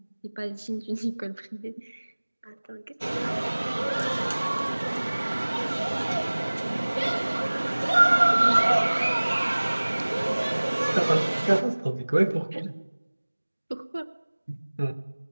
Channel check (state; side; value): inverted; both; correlation -1.00